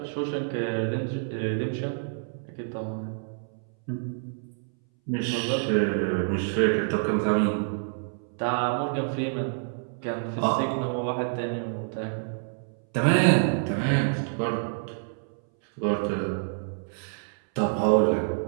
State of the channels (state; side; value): silent; left; 60 dB below the other